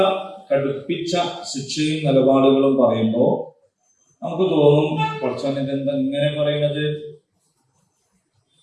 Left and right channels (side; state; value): both; identical; correlation 1.00